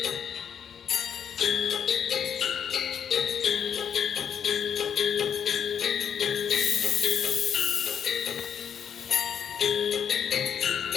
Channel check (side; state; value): right; quieter; 8.2 dB